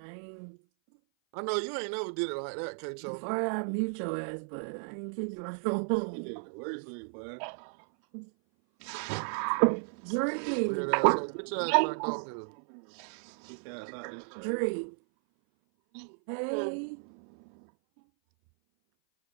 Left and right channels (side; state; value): left; silent; 55 dB below the other